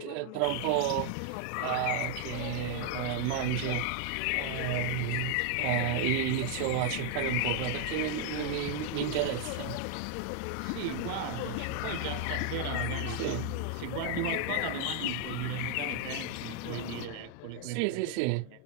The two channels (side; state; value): both; different; correlation 0.00